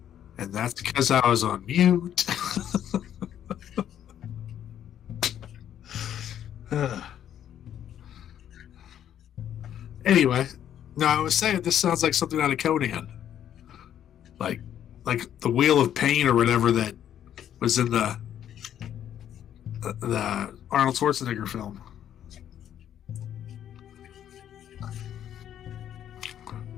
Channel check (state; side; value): quieter; right; 10.3 dB